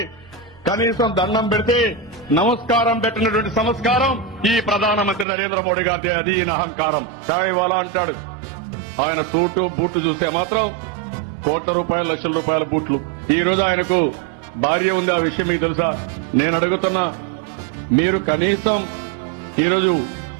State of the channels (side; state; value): left; drops out; at 5.2 s